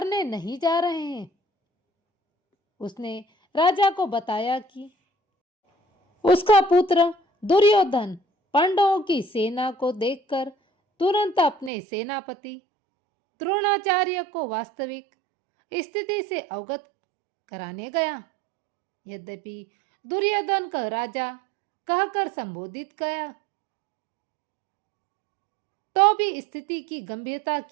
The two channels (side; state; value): left; drops out; at 11.7 s